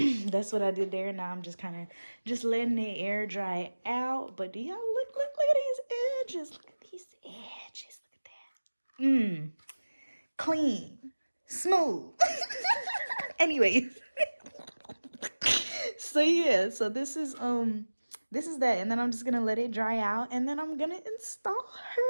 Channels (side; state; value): both; inverted; correlation -1.00